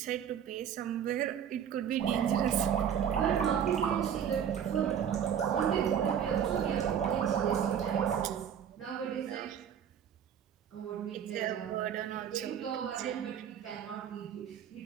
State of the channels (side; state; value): left; quieter; 8.6 dB